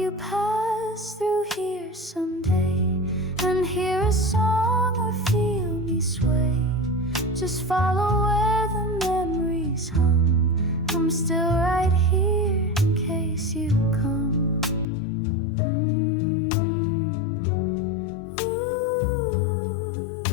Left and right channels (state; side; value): drops out; right; at 14.9 s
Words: pass through here someday and hear a song or feel me sway, just follow where the memories hum. I'm still right here in case you come.